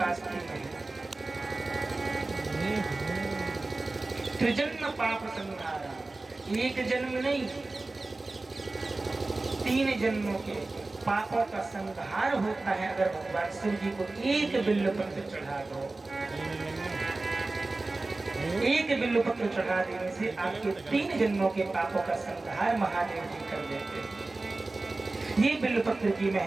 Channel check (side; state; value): left; quieter; 3.2 dB